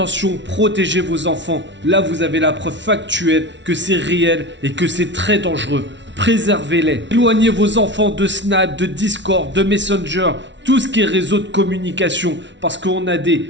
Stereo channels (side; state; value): left; late; 0.52 ms